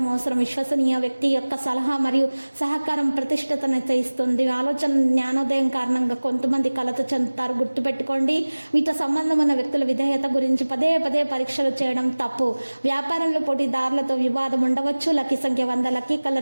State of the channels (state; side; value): inverted; both; correlation -1.00